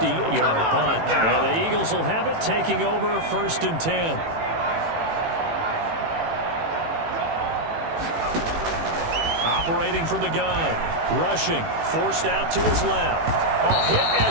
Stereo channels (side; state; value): left; late; 18 ms